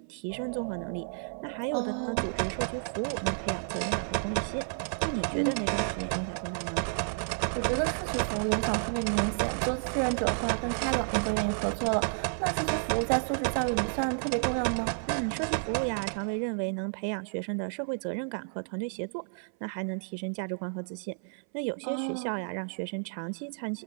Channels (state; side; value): silent; left; 57 dB below the other